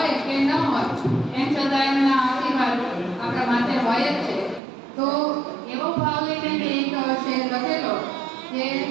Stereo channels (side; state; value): left; drops out; at 4.6 s